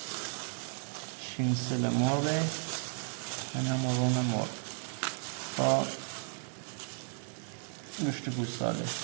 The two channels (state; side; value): silent; left; 55 dB below the other